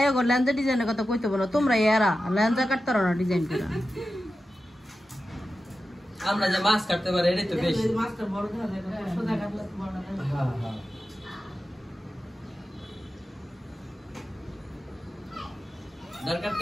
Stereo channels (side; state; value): both; normal; correlation 0.92